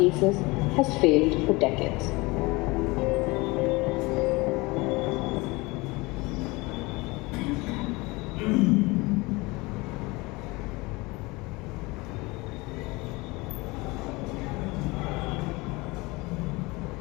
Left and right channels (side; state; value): right; quieter; 23.9 dB